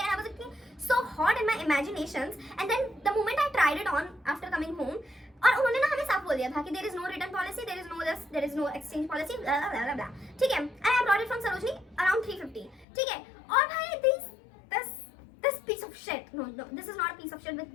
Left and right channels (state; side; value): drops out; right; at 12.9 s